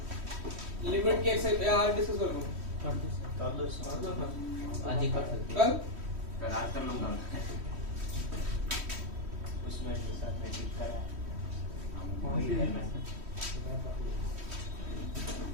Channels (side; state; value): left; late; 3.1 ms